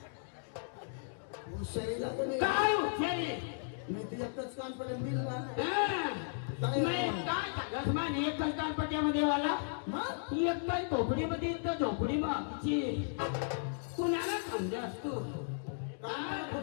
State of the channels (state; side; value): silent; right; digital silence